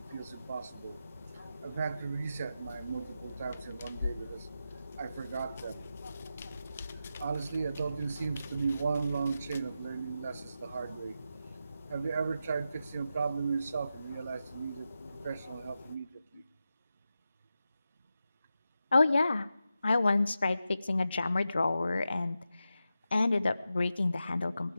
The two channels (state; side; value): inverted; both; correlation -0.90